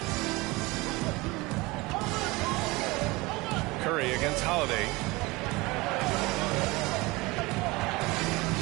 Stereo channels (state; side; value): quieter; left; 22.8 dB